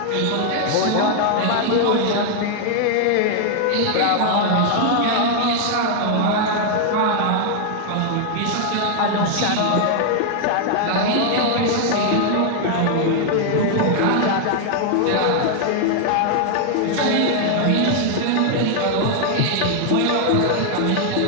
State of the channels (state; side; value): different; both; correlation 0.00